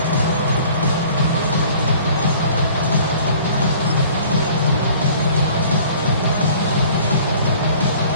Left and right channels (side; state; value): both; inverted; correlation -0.51